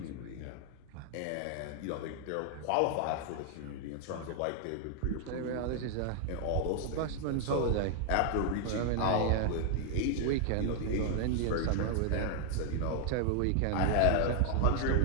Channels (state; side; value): different; both; correlation 0.00